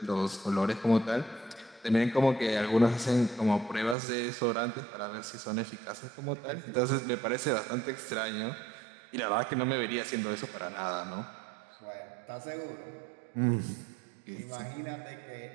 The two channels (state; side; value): drops out; left; at 4.0 s